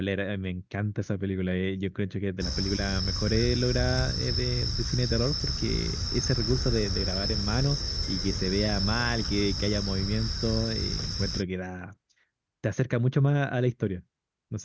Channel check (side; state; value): both; identical; correlation 1.00